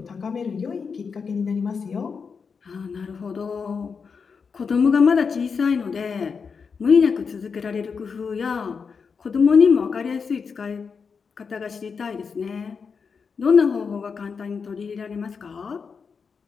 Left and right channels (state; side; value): quieter; right; 5.6 dB